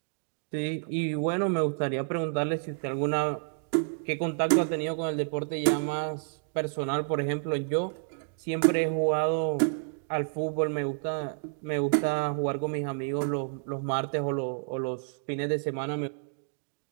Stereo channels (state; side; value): silent; left; digital silence